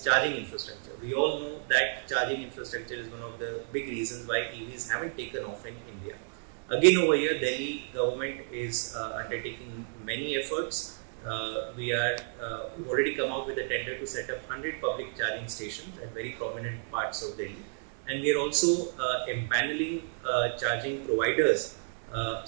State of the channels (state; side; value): silent; left; digital silence